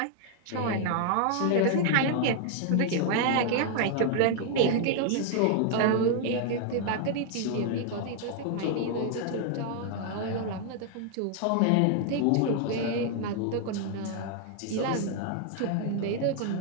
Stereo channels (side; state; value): both; different; correlation 0.00